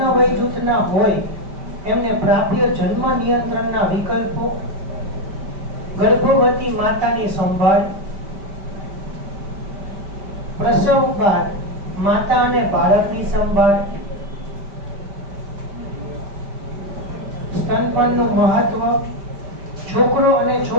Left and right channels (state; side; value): late; left; 5.1 ms